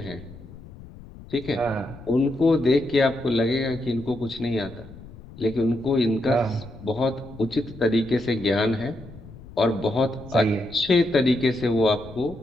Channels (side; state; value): left; noise; rumble, 18 dB below the sound